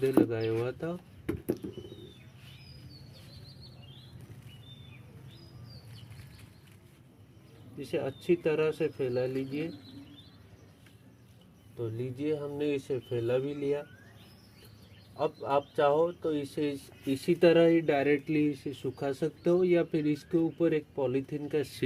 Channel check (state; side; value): identical; both; correlation 1.00